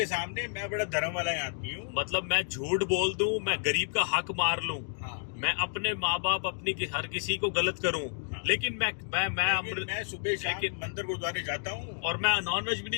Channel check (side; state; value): right; silent; digital silence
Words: सामने मैं बड़ा धर्म वाला आदमी हूँ। मतलब मैं झूठ बोल दूं, मैं गरीब का हक मार लूं, मैं अपने माँ बाप हर किसी को गलत करूं, लेकिन मैं सुबह शाम मंदिर गुरुद्वारे जाता हूँ और मैं नॉनवेज भी